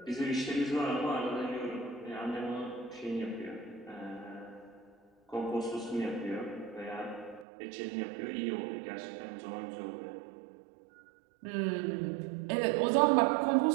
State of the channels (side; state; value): left; drops out; at 7.5 s